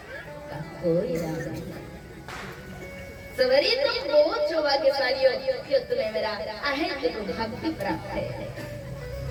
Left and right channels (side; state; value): both; identical; correlation 1.00